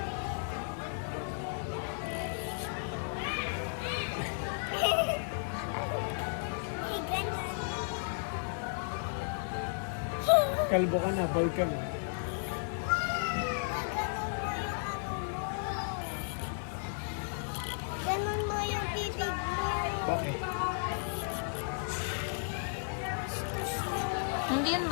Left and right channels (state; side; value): silent; right; digital silence